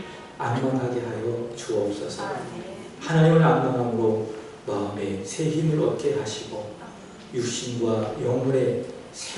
안망하게 하여 주옵소서. 하나님을 안망함으로 마음에 새 힘을 얻게 하시고 육신과 영혼의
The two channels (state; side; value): identical; both; correlation 1.00